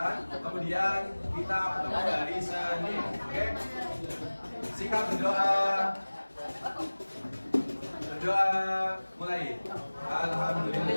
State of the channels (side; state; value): both; inverted; correlation -1.00